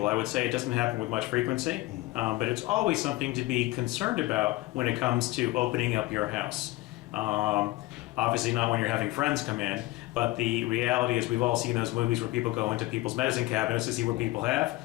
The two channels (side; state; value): right; quieter; 18.9 dB